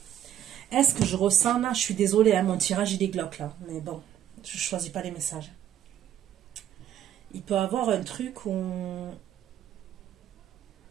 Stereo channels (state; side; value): quieter; left; 10.6 dB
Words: Est-ce que je ressens là, je suis désolée, hein, mon tirage il est glauque là. Mais bon, je ne choisis pas les messages. Il peut y avoir un truc où...